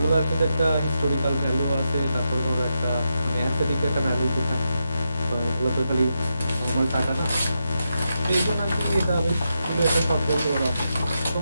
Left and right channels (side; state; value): both; inverted; correlation -0.85